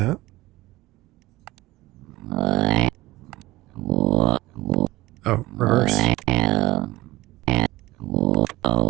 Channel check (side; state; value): left; quieter; 18.6 dB